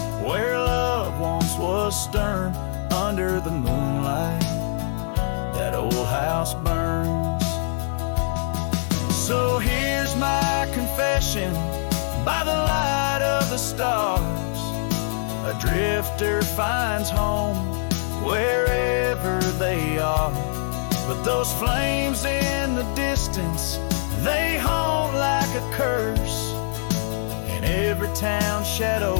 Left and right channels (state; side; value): silent; right; 63 dB below the other